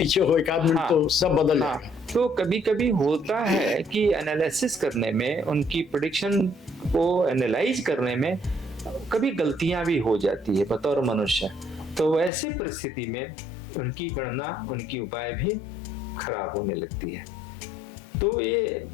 हो एक आदमी तो सब बदल जाएगा। तो कभी कभी होता है कि एनालिसिस करने में, उनकी प्रेडिक्शन को एनालाइज करने में कभी गलतियां भी हो जाती है बतौर मनुष्य। तो ऐसे परिस्थिति में उनकी गणना, उनकी उपाय भी खराब होने लगती है। तो ये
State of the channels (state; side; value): drops out; right; at 12.3 s